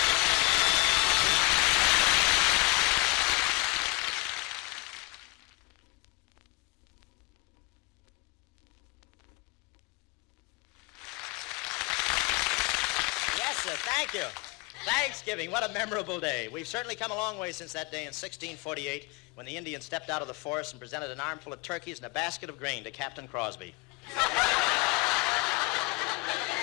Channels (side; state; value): right; quieter; 26.7 dB